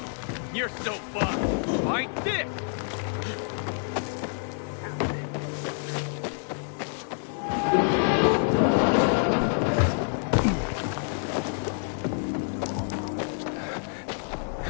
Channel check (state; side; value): silent; right; 60 dB below the other